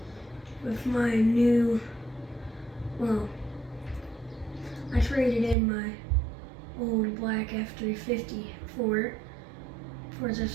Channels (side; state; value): left; drops out; at 5.6 s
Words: with my new, well, I traded in my old black F350 for it. For